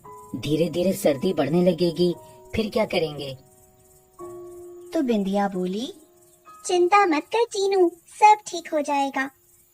धीरे धीरे सर्दी बढ़ने लगेगी, फिर क्या करेंगे? तो बिंदिया बोली, चिंता मत कर चीनू, सब ठीक हो जाएगा।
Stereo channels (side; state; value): both; identical; correlation 1.00